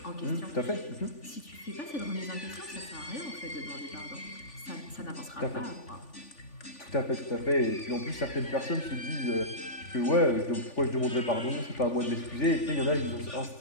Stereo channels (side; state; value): right; late; 3.4 ms